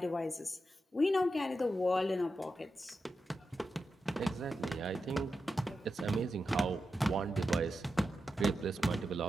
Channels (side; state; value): both; normal; correlation 0.89